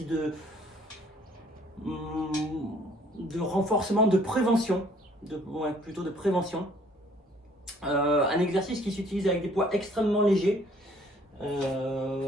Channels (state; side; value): normal; both; correlation 0.59